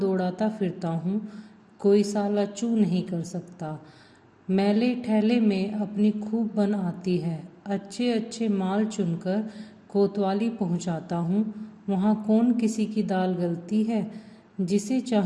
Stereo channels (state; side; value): identical; both; correlation 1.00